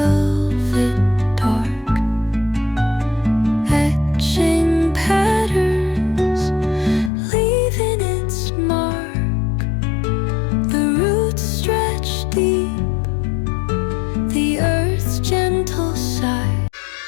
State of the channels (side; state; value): right; drops out; at 7.1 s